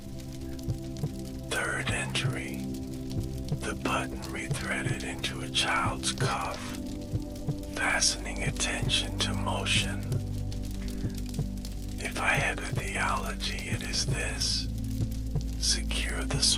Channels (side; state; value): both; identical; correlation 1.00